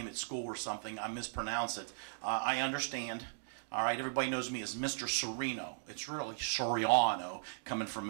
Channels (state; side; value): silent; left; digital silence